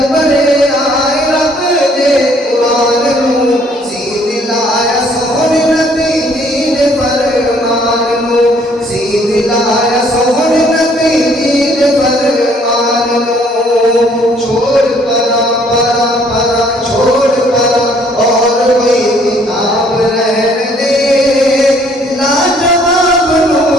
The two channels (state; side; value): normal; both; correlation 0.62